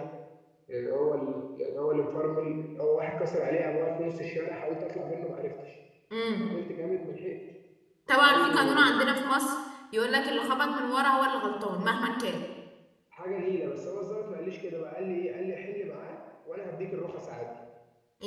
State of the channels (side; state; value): both; identical; correlation 1.00